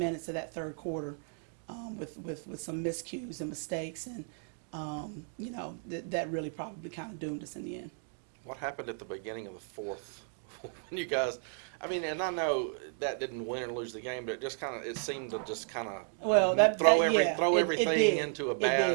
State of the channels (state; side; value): silent; left; 55 dB below the other